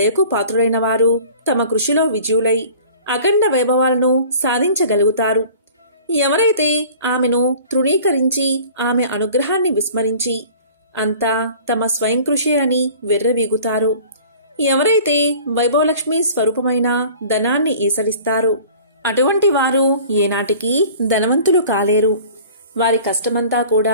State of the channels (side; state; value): both; inverted; correlation -0.45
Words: పాత్రులైన వారు తమ కృషిలో విజయులై అఖండ వైభవాలను సాధించగలుగుతారు. ఎవరైతే ఆమెను తృణీకరించి ఆమె అనుగ్రహాన్ని విస్మరించి అంతా తమ స్వయం కృషి అని వెర్రవీగుతారో, ఎవరైతే వైభవలక్ష్మి స్వరూపమైన ధనాన్ని ఈసలిస్తారో అటువంటి వారు ఏనాటికి ధనవంతులు కాలేరు. వారి కష్టమంతా